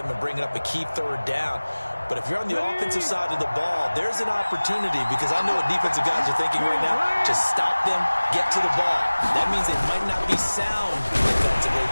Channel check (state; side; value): inverted; both; correlation -1.00